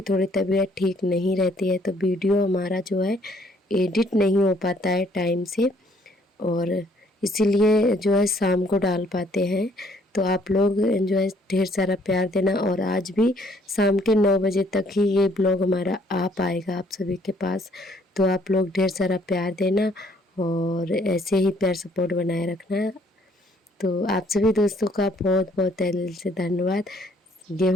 थोड़ी तबीयत ठीक नहीं रहती है, तो वीडियो हमारा जो है एडिट नहीं हो पाता है टाइम से, और इसीलिए जो है शाम को डाल पाते हैं। तो आप लोग जो है ढेर सारा प्यार देना, और आज भी शाम के 9 बजे तक ही ये ब्लॉग हमारा आ पाएगा आप सभी के पास। तो आप लोग ढेर सारा प्यार देना और ऐसे ही प्यार सपोर्ट बनाए रखना। तो आप सभी दोस्तों का बहुत बहुत तहे दिल से धन्यवाद।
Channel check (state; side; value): normal; both; correlation 0.64